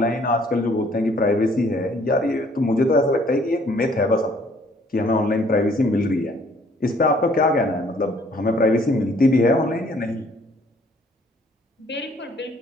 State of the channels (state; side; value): normal; both; correlation 0.61